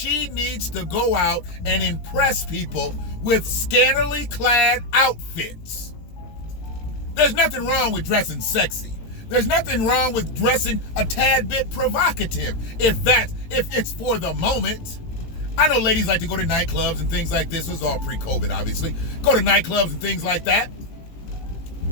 needs to go out and impress people with scantily clad outfits. There's nothing wrong with dressing sexy. There's nothing wrong with dressing a tad bit provocative if it's for the moment. I know ladies like to go to nightclubs and things like this. It was all pre-COVID, obviously. Go to nightclubs and things like that.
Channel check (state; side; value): late; right; 18 ms